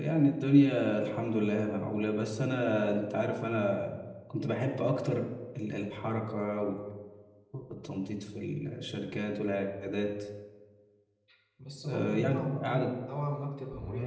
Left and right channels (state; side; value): identical; both; correlation 1.00